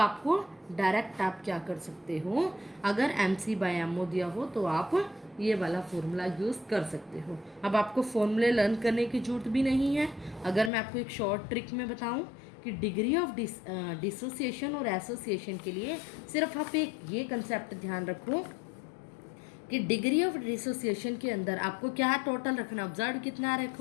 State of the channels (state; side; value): drops out; right; at 10.7 s